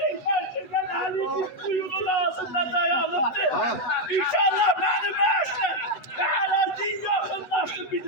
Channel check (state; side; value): late; right; 8.1 ms